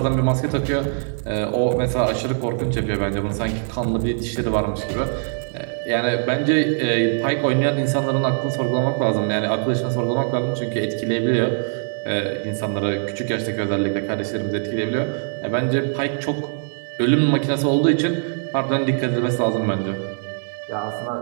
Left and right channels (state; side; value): silent; left; 63 dB below the other